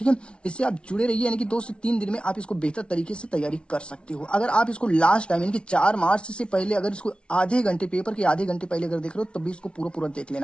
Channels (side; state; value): right; late; 0.058 ms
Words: है, इससे आप जुड़े रहिए, यानी कि 2 से 3 दिन में आप इसको बेहतर तरीके से तैयारी कर सकते हो। अगर आप इसको लास्ट टाइम, यानी कि 4 मार्च से पहले, अगर इसको आधे घंटे, पेपर के आधे घंटे पहले अगर देख रहे हो, तब भी इसको पूरा देख